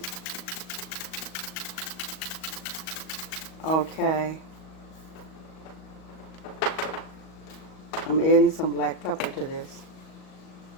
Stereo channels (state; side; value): late; right; 38 ms